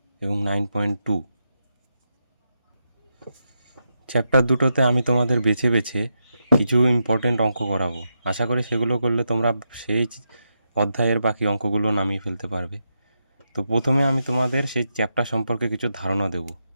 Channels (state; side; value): inverted; both; correlation -0.85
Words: এবং 9.2। চ্যাপ্টার দুটোতে আমি তোমাদের বেছে বেছে কিছু ইম্পর্টেন্ট অঙ্ক করাবো। আশা করি সেগুলো করলে তোমরা সেই অধ্যায়ের বাকি অঙ্কগুলো নামিয়ে ফেলতে পারবে। তো প্রথমে আমি তোমাদের সেই চ্যাপ্টার সম্পর্কে কিছু ধারণা দেব।